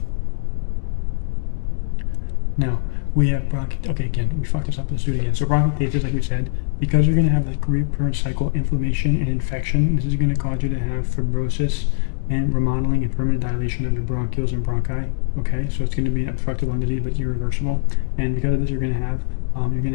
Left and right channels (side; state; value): right; silent; digital silence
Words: Now, we have okay, again, we fucked this up, let's do it again. So bronchiectasis, like we said, because you're going to have the recurrent cycle inflammation and infection, this is going to cause you to have fibrosis and remodeling and permanent dilation of your bronchioles and bronchi. Okay, so it's going to be obstructive lung disease, but irreversible. And because of this, you're going to